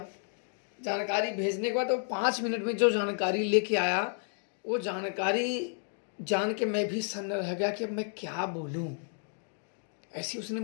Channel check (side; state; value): right; silent; 57 dB below the other